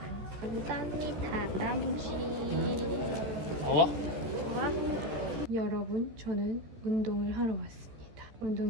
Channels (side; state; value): left; late; 14 ms